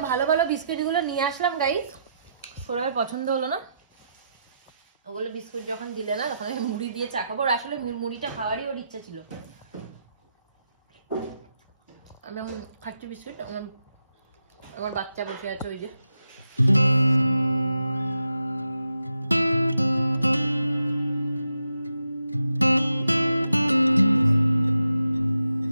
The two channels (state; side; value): inverted; both; correlation -0.84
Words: ভালো ভালো বিস্কিট গুলো নিয়ে আসলাম গাইস, সৌরভের পছন্দ হলো না। ওগুলো বিস্কুট যখন দিলে না তখন আমি মুড়ি দিয়ে চা খাবো। আসলে মুড়িটা খাওয়ারই ওর ইচ্ছা ছিল। আমি খাচ্ছি বিস্কুট, আমার বাচ্চা বসে আছে ওই যে।